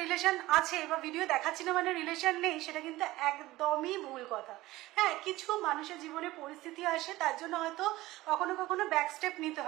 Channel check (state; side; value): quieter; left; 17.9 dB